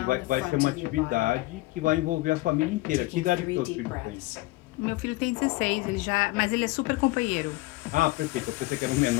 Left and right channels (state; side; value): quieter; right; 20.0 dB